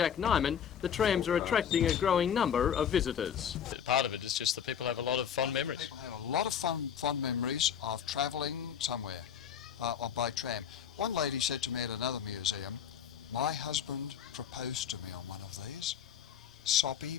Nyman, the trams are attracting a growing number of visitors. Part of it is just that people have a lot of fond memories. People have a lot of fond memories of travelling somewhere by tram. One lady said to me at another museum My husband proposed to me on one of these. Soppy,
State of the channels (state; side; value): quieter; right; 8.4 dB